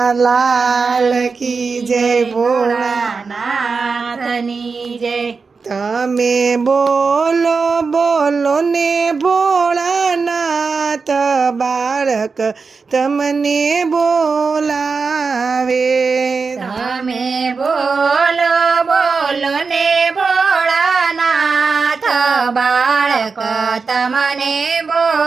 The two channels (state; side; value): quieter; left; 4.8 dB